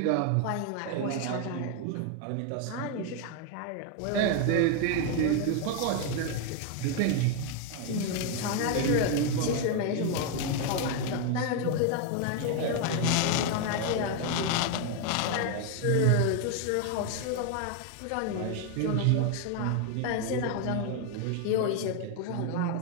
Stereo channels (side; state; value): both; different; correlation 0.01